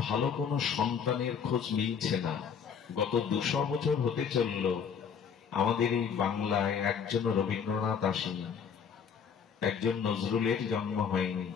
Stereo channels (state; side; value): quieter; right; 7.0 dB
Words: ভালো কোনো সন্তানের খোঁজ মিলছে না। গত 200 বছর হতে চলল আমাদের এই বাংলায় একজন রবীন্দ্রনাথ আসেনি, একজন নজরুলের জন্ম হয়নি।